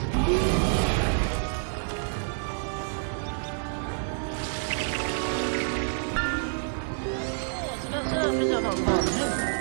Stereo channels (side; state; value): left; silent; 59 dB below the other